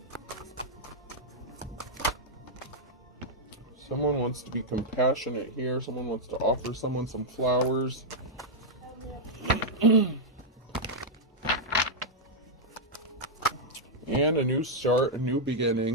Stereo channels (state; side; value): normal; both; correlation -0.05